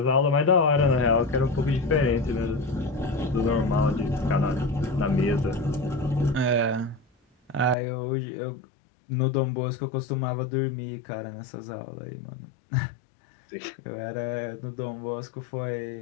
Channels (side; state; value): right; drops out; at 7.8 s